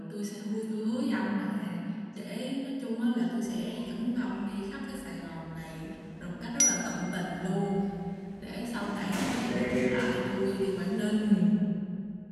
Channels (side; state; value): both; identical; correlation 1.00